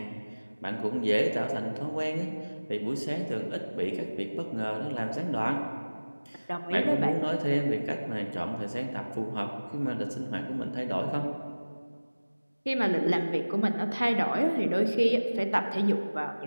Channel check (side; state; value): both; inverted; correlation -1.00